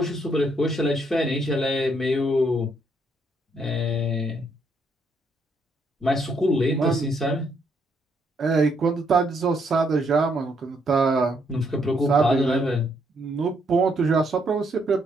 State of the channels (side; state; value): both; normal; correlation 0.73